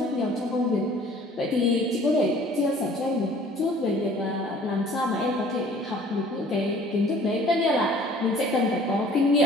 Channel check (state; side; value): normal; both; correlation 0.52